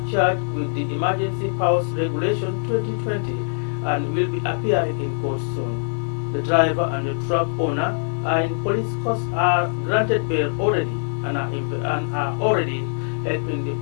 charged with the Emergency Powers Regulation 2020 and will be appearing in court soon. The driver and the truck owner are in police custody, are granted bail already and are already helping the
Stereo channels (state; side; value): silent; right; 57 dB below the other